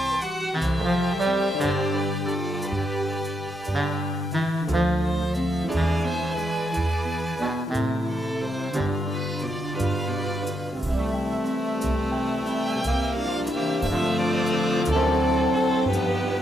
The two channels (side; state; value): both; normal; correlation 0.81